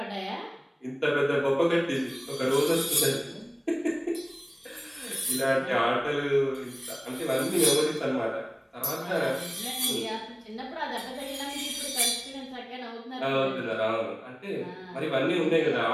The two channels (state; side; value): identical; both; correlation 1.00